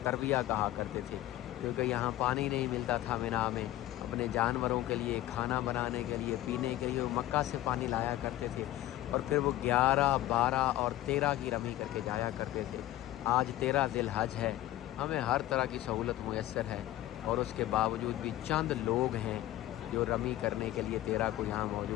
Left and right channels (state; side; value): quieter; right; 14.5 dB